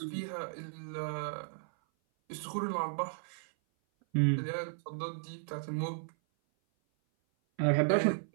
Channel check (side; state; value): left; silent; 55 dB below the other